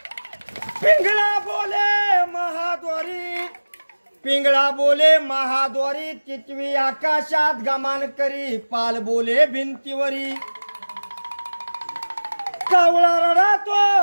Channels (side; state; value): both; inverted; correlation -1.00